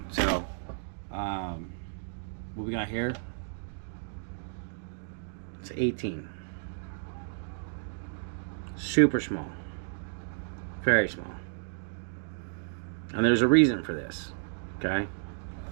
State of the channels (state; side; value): silent; left; digital silence